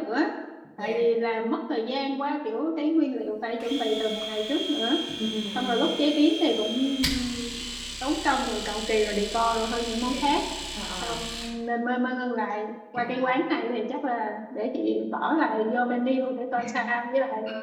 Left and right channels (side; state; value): both; identical; correlation 1.00